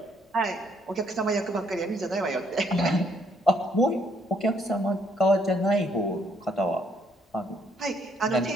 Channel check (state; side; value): normal; both; correlation 0.69